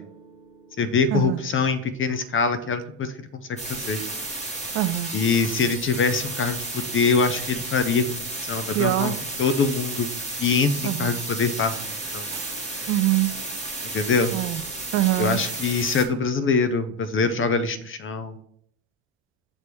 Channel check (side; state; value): both; normal; correlation 0.10